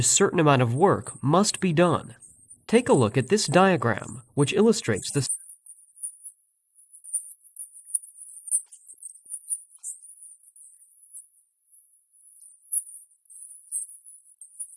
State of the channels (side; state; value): both; identical; correlation 1.00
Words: certain amount of work must be done. Take a look at this diagram, which illustrates Aquí vamos a this. hacer un paréntesis. Lo que está explicando en este video básicamente es cómo funciona el flujo del marco de trabajo de Scrum. Scrum, a diferencia de lo que es